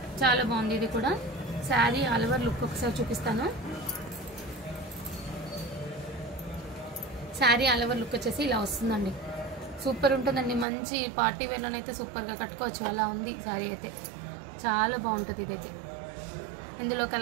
చాలా బాగుంది. ఇది కూడా శారీ ఆల్ ఓవర్ లుక్ ఒకసారి చూపిస్తాను. శారీ ఆల్ ఓవర్ లుక్ వచ్చేసి ఇలా వస్తుందండి. సూపర్ ఉంటుందండి. మంచి పార్టీ వేర్లోనైతే సూపర్గా కట్టుకోవచ్చు. అలా ఉంది శారీ అయితే. చాలా బాగుంటుంది ఇదైతే. ఇందులో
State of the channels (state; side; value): drops out; left; at 10.7 s